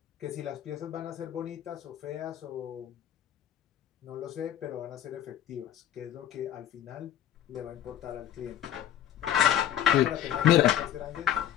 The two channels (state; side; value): quieter; right; 10.8 dB